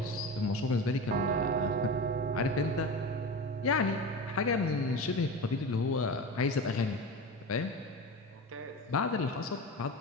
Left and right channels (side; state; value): both; normal; correlation 0.27